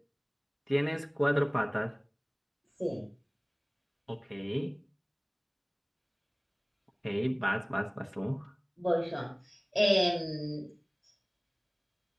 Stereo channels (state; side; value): identical; both; correlation 1.00